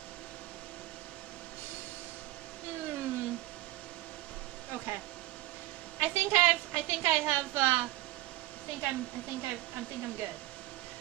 Okay. I think I'm good.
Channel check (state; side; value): quieter; left; 17.4 dB